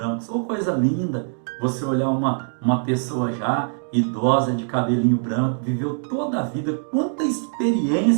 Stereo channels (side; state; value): left; silent; digital silence